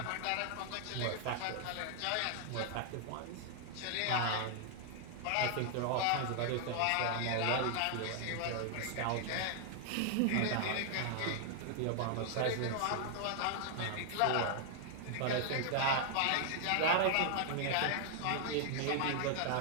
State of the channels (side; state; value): both; different; correlation 0.00